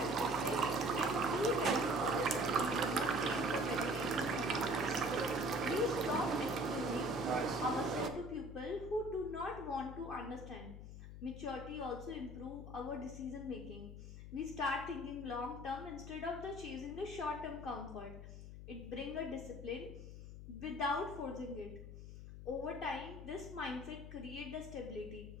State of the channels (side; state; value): left; noise; hum, 11 dB below the sound